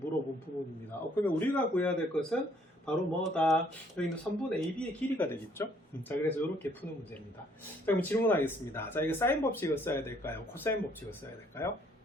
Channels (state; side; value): normal; both; correlation 0.64